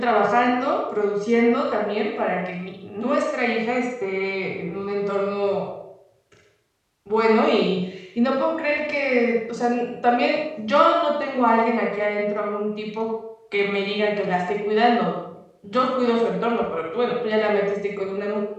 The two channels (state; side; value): identical; both; correlation 1.00